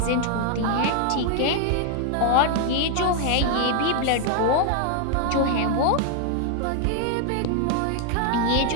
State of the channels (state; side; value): different; both; correlation 0.00